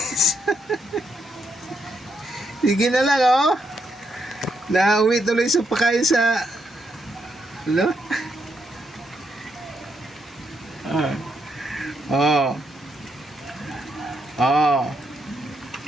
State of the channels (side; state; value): both; normal; correlation 0.78